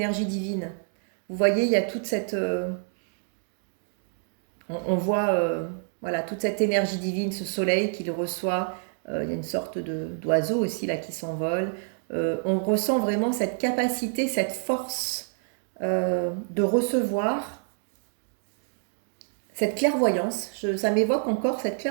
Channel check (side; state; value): left; silent; 60 dB below the other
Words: divines. Vous voyez, il y a toute cette... on voit voilà, toute cette énergie divine, ce soleil qu'il reçoit. Il y a une sorte d'oiseau aussi là qui s'envole. On ressent vraiment cette capacité, cette force de recevoir cette clairvoyance, ça m'évoque encore cette